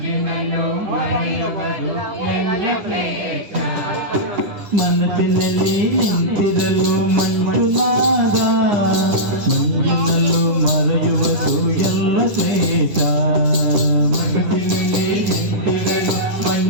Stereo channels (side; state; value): left; late; 10 ms